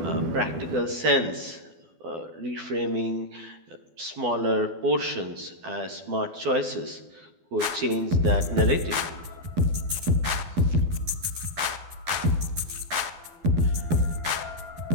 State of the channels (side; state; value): left; late; 12 ms